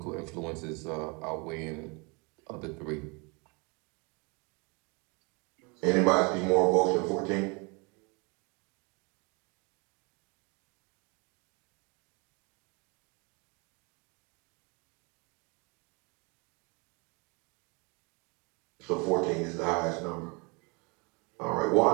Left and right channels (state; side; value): quieter; left; 30.6 dB